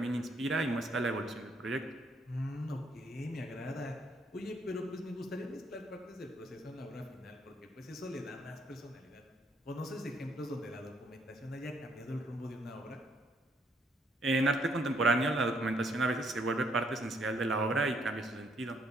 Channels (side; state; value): both; normal; correlation 0.69